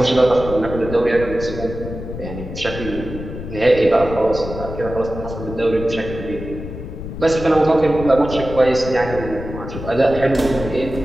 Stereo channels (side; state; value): left; noise; rumble, 9 dB below the sound